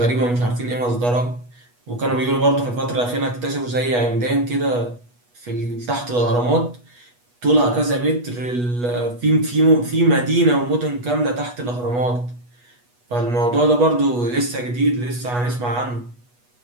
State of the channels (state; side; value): late; left; 8.2 ms